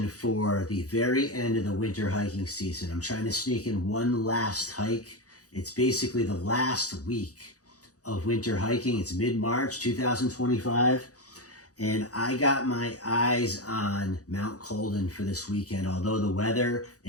for the very end of the winter hiking season. I'm trying to sneak in one last hike. It's basically the last week of winter hiking. It's mid-March 2025, and I got my eyes on Mount Colden for this weekend. Although the weather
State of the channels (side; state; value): right; late; 0.67 ms